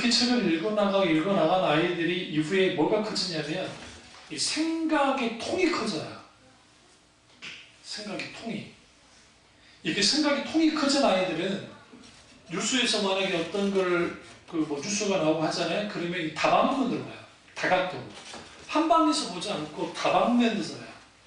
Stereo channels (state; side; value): identical; both; correlation 1.00